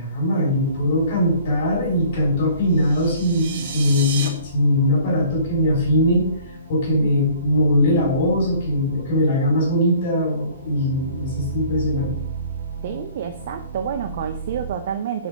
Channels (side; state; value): both; inverted; correlation -0.52